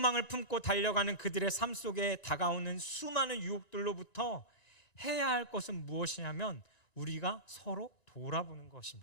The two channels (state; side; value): late; right; 2.9 ms